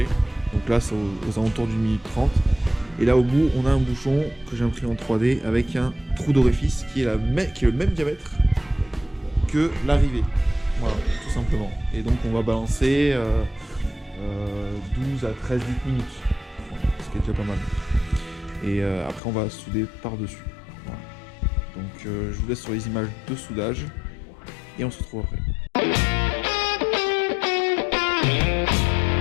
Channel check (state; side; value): drops out; right; at 19.2 s